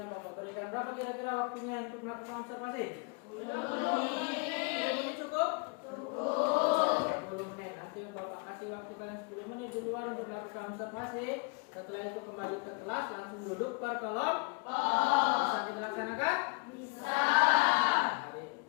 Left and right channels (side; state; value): right; quieter; 32.7 dB